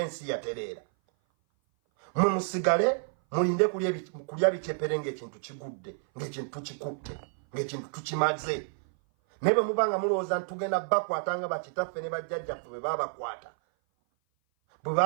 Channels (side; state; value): left; silent; 56 dB below the other